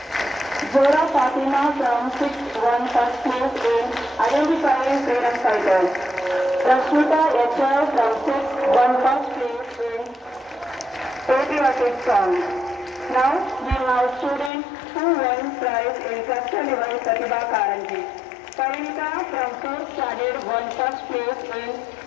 Zora Fatima from 6th won first place in identifying freedom fighters. Rashmita HR from 6th won first place in patriotic song. Now we have students who won prize in cluster level Pratibha Karanji. Parinita from 4th standard won first place in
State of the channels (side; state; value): right; drops out; at 14.5 s